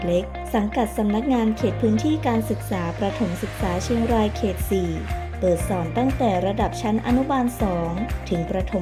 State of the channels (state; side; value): identical; both; correlation 1.00